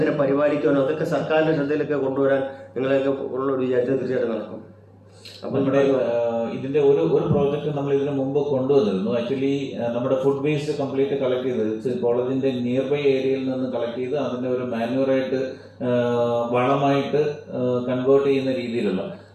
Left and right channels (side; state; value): both; identical; correlation 1.00